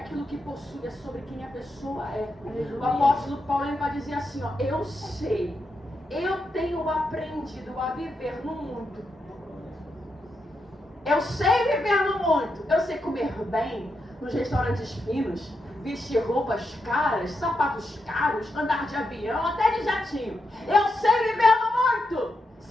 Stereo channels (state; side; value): normal; both; correlation 0.85